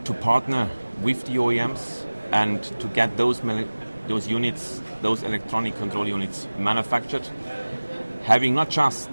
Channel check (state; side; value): inverted; both; correlation -1.00